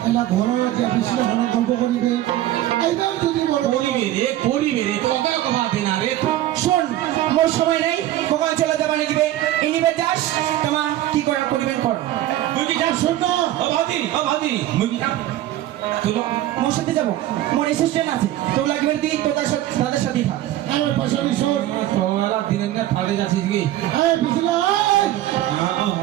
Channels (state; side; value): quieter; left; 14.0 dB